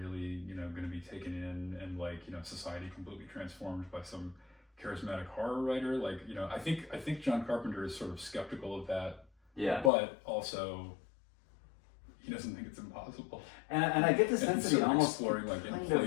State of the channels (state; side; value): drops out; right; at 9.9 s